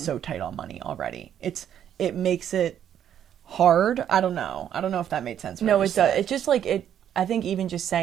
tight on money already? It makes it hard. I don't know if that made sense. No, it does. It's just like it. I think even just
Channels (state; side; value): quieter; left; 9.9 dB